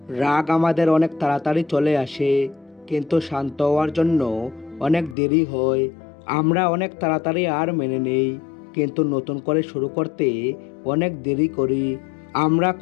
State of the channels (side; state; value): right; drops out; at 5.2 s